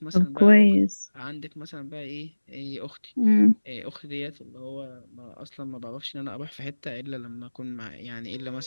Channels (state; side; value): inverted; both; correlation -1.00